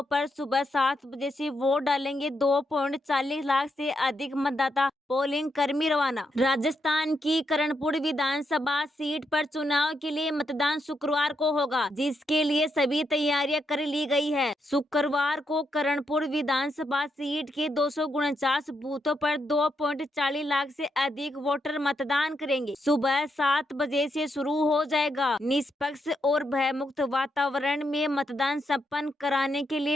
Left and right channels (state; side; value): normal; both; correlation 0.81